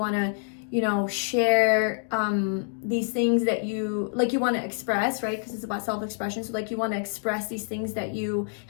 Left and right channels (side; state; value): right; silent; 60 dB below the other